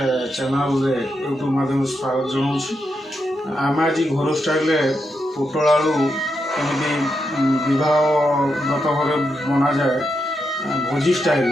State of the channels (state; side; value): normal; both; correlation 0.84